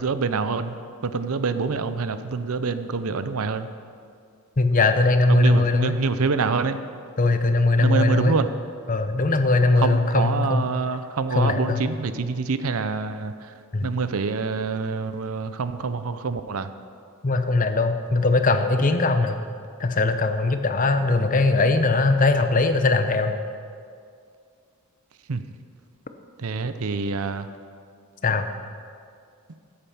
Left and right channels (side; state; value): both; normal; correlation 0.47